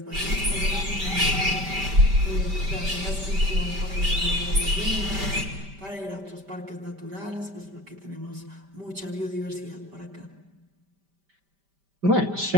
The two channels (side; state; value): left; late; 5.1 ms